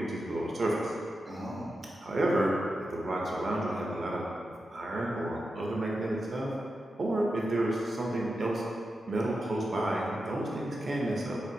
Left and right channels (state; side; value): normal; both; correlation 0.89